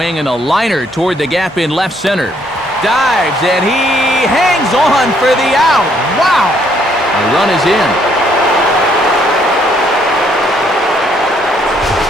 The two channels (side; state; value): both; normal; correlation 0.68